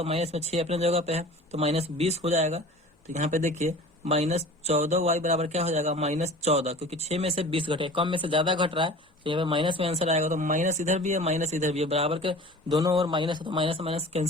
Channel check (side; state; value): both; normal; correlation 0.41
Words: माइनस में 6 अपने जगह पे है तो माइनस 20 हो जाएगा। तो यहाँ पे देखिए माइनस 14 y बराबर क्या हो जाएगा, माइनस 14, क्योंकि 6 में से 20 घटे, कम में से ज्यादा घट रहा है, तो यहाँ पे माइनस में आंसर आएगा। तो माइनस इधर भी है, माइनस इधर भी है, बराबर के दोनों ओर माइनस है, तो माइनस माइनस